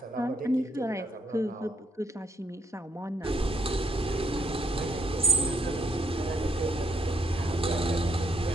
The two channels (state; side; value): normal; both; correlation 0.70